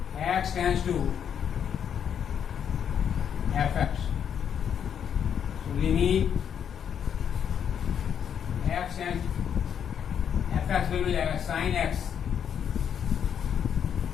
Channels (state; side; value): quieter; right; 8.4 dB